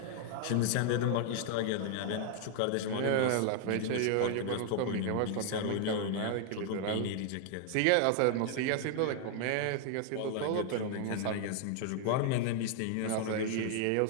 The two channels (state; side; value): different; both; correlation 0.00